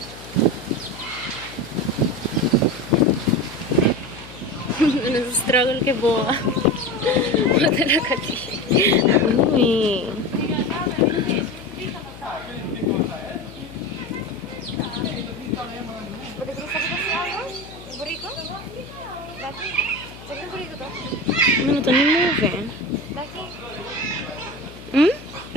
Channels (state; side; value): noise; left; hum, 17 dB below the sound